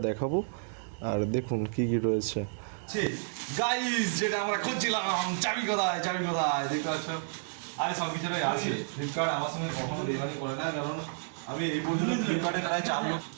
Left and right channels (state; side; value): silent; left; digital silence